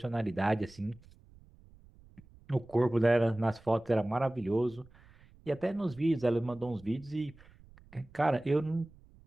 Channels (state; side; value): noise; right; rumble, 25 dB below the sound